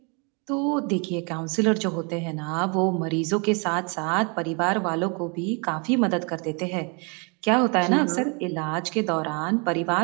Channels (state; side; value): quieter; left; 33.7 dB